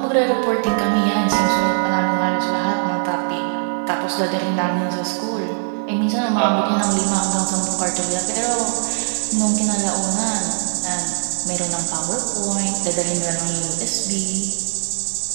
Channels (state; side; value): silent; left; digital silence